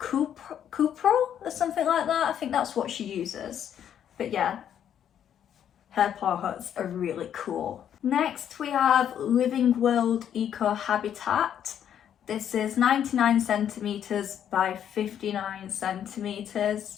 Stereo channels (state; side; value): quieter; right; 9.5 dB